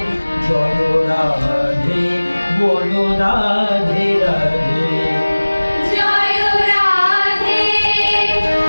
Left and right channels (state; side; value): inverted; both; correlation -1.00